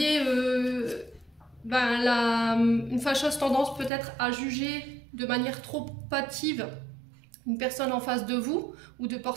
une fâcheuse tendance peut-être à juger de manière trop hâtive une personne en face de vous, ou de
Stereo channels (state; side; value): drops out; left; at 3.9 s